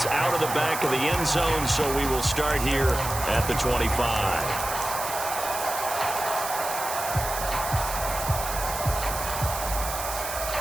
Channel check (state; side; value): noise; right; hiss, 6 dB below the sound